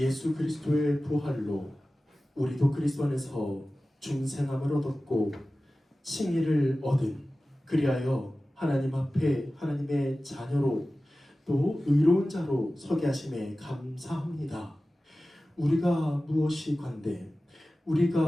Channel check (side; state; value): both; normal; correlation 0.96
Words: 그리스도의 부활로 우리도 그리스도 안에서 중생함을 얻었고 칭의를 얻은, 그리하여 하나님 앞에 하나님의 자녀로 또 의로운 자로 서게 하심에 감사합니다. 우리가 무엇이 관대,